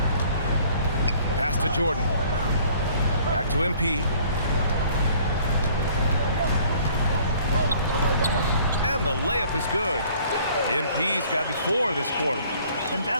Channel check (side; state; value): both; inverted; correlation -0.56